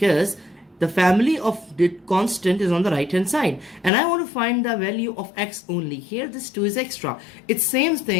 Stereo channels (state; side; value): drops out; right; at 3.9 s